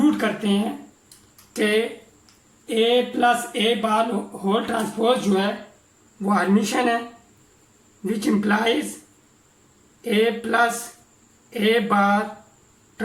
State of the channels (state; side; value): identical; both; correlation 1.00